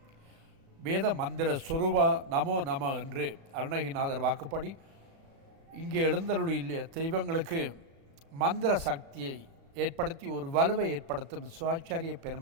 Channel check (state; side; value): late; left; 36 ms